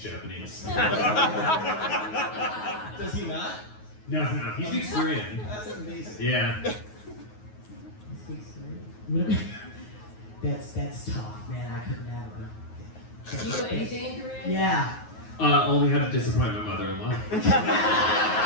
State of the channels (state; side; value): late; right; 9.4 ms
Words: Japanese? Does he not? No, he speaks Korean. That's amazing. Yeah. That's tough, man. I could never. Do you know anything in Korean? Yeah. Only had to disappoint my mother-in-law.